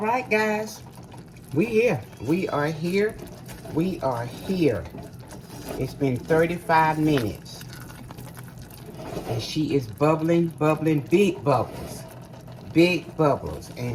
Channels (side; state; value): both; identical; correlation 1.00